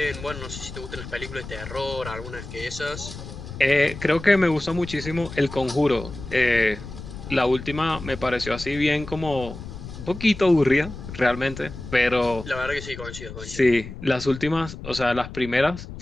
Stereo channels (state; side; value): noise; left; rumble, 11 dB below the sound